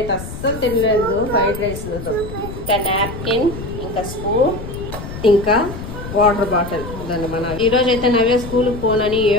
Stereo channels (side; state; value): left; noise; rumble, 10 dB below the sound